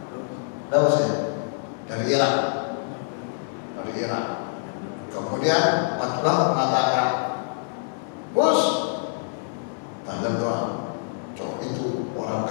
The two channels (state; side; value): silent; right; digital silence